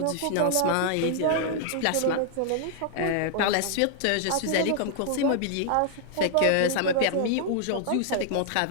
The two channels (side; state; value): both; different; correlation -0.01